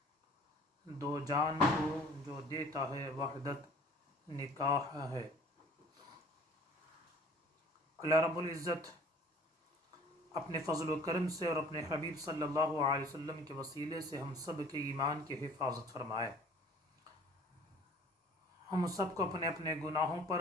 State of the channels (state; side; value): normal; both; correlation 0.50